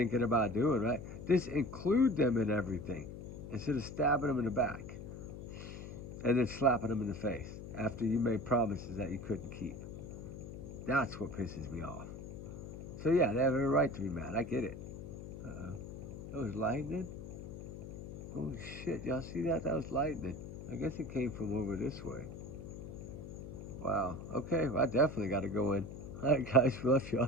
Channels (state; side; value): noise; left; hum, 10 dB below the sound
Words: about doing, right? Just include them in everything instead of stabbing them in the back and then slapping them in the face after you made promises that you couldn't keep. That's what pisses me off. So yeah, they have every right to be mad. I get it. That was lightning? Holy shit, y'all see that? That was lightning. I guess it came from over this way. Wow. Okay, well, I definitely got to go in. All right, guys, love